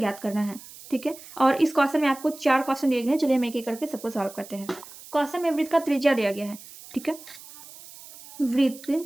करना है। ठीक है, और इस क्वेश्चन में आपको 4 क्वेश्चन दिए गए हैं। चलिए हम एक एक करके सबको सॉल्व करते हैं। क्वेश्चन में वृत्त का त्रिज्या दिया गया है। ठीक है, वृत्त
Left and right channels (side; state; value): right; noise; hiss, 18 dB below the sound